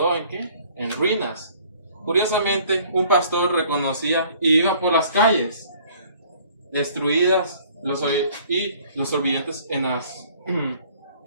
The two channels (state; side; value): inverted; both; correlation -0.55